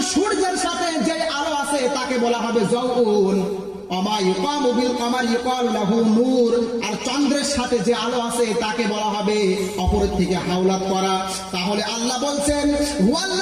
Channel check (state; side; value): identical; both; correlation 1.00